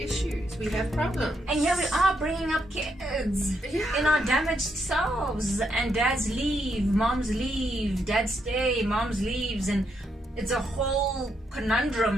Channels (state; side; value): normal; both; correlation 0.78